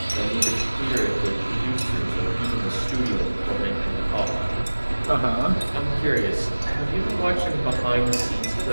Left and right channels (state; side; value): inverted; both; correlation -1.00